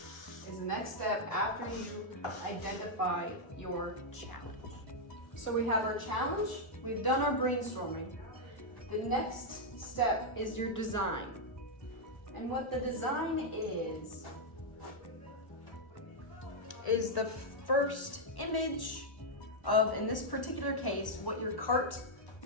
is the next step after you identify your challenge. So we have our challenge, we've done our brainstorming. The next step is your design. And what the design is the first image of, in this particular case, what your cart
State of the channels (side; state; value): right; late; 1.1 ms